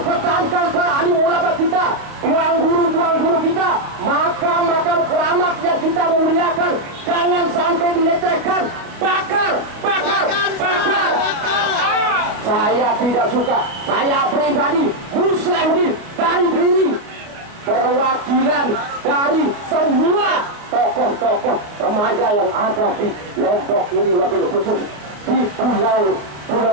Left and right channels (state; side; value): late; left; 29 ms